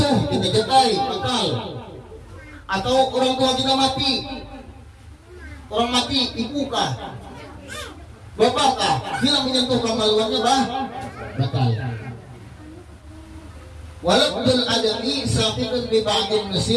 kita jatai batal. Atau orang tua kita mati. Orang mati ibukah? Bapakkah? Bila menyentuh kemaluannya batal. Walabdul adami saqitun bi ba'dil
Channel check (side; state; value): both; identical; correlation 1.00